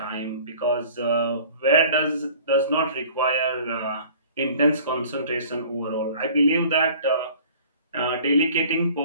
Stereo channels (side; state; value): both; inverted; correlation -0.48